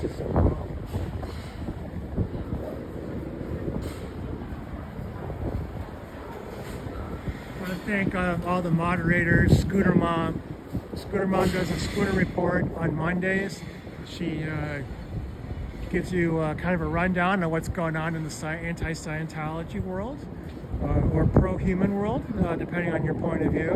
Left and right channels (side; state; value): both; identical; correlation 1.00